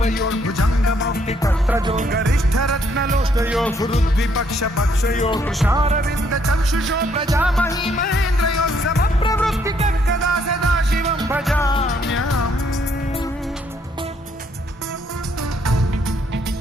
कर्त्रजो गरिष्ठ रत्नलोष्टयो गुरुद्विपक्ष पक्षयो कृशारविन्द चक्षुषो प्रजामही महेन्द्रयो समप्रवृत्ति कदा सदा शिवं भजाम्यहम्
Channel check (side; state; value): both; normal; correlation 0.69